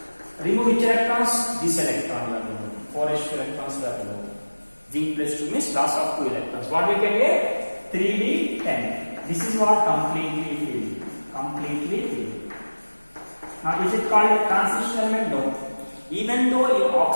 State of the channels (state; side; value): inverted; both; correlation -1.00